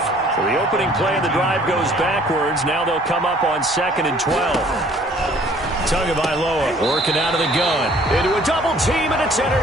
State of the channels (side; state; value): both; normal; correlation 0.56